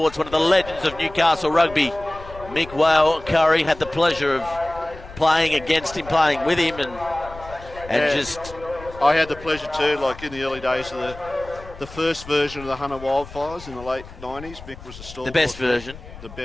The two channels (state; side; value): noise; left; rumble, 17 dB below the sound